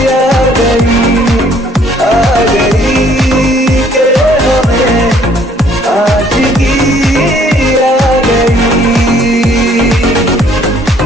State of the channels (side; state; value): both; normal; correlation 0.61